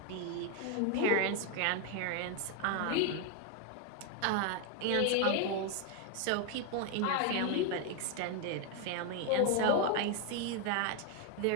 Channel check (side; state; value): both; different; correlation 0.01